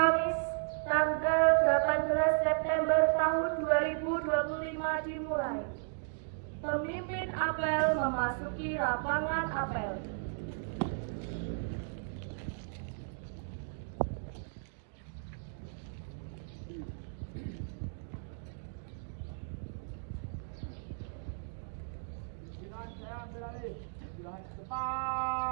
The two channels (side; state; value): left; silent; digital silence